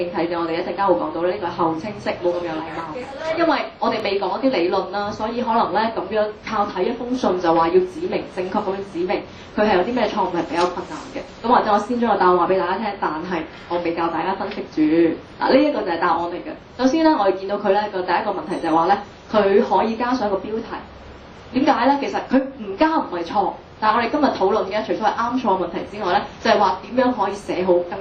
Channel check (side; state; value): both; identical; correlation 1.00